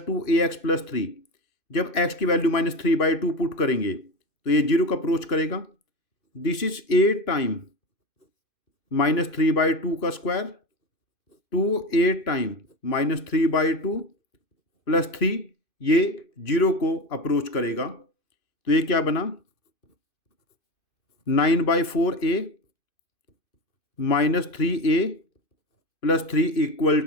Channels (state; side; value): late; right; 2.6 ms